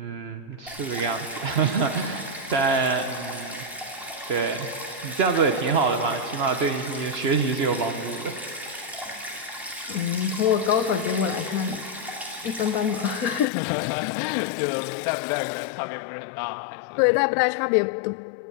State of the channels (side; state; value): right; drops out; at 13.5 s